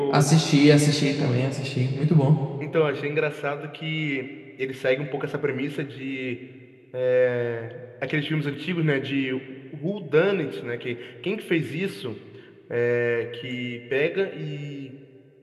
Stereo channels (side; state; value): both; identical; correlation 1.00